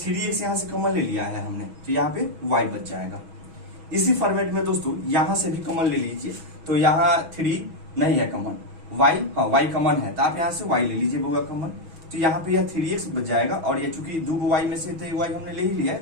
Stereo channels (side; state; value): left; late; 6.2 ms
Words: यहाँ से कॉमन ले लिया है हमने, तो यहाँ पे y बच जाएगा। इसी फॉर्मेट में दोस्तों यहाँ से भी कॉमन ले लीजिए, तो यहाँ 3 नहीं है कॉमन, y हाँ y कॉमन है, तो आप यहाँ से y ले लीजिए बउआ कॉमन, तो यहाँ पे यह 3x बच जाएगा, और ये चूंकि 2 y में से तो y हमने ले ही लिया है,